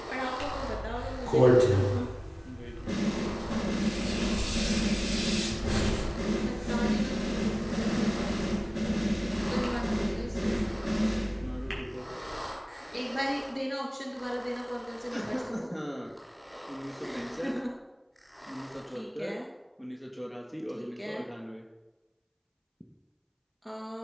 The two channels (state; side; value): identical; both; correlation 1.00